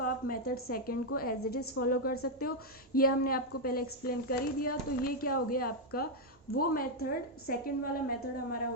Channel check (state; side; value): normal; both; correlation 0.00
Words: आप मेथड सेकंड को एज इट इज़ फॉलो कर सकते हो। ये हमने आपको पहले एक्सप्लेन कर ही दिया। तो ये क्या हो गया आपका वो मेथड, सेकंड वाला मेथड हमारा